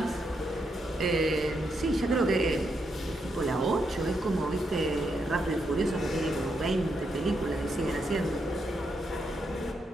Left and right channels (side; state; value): both; normal; correlation 0.80